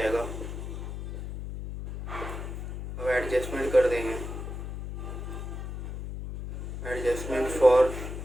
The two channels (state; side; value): noise; left; hum, 7 dB below the sound